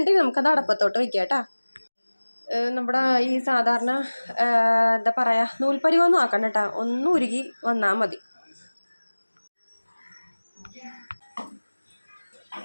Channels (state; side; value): inverted; both; correlation -1.00